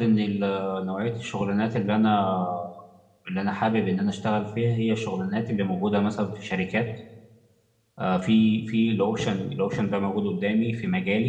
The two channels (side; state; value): both; identical; correlation 1.00